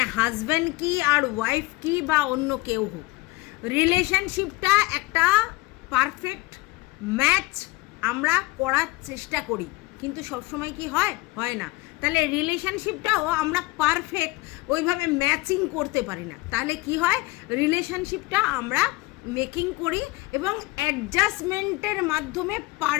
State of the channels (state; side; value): quieter; right; 22.4 dB